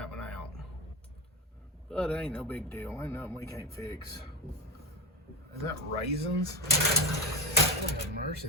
one out. But it ain't no big deal. Ain't nothing we can't fix. Is that raisins? Oh, mercy,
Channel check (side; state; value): both; normal; correlation 0.16